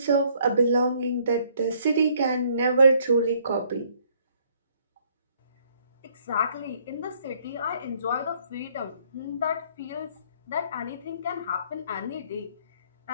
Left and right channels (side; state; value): both; inverted; correlation -0.64